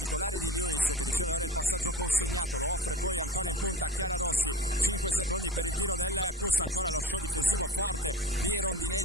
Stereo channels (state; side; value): normal; both; correlation 0.35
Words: di Lewis, che riceve ora il passaggio consegnato, lo offre poi ancora in punta a Chiara Rossi. 5 secondi per il tiro del CUS, ancora lo show difensivo forte di